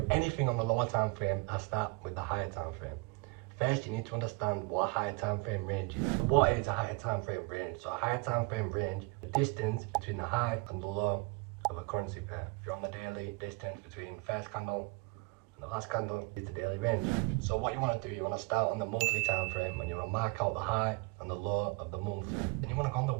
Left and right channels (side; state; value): left; quieter; 28.1 dB